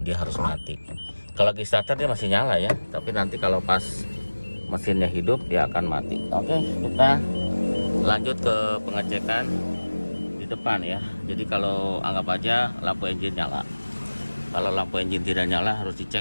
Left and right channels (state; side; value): inverted; both; correlation -1.00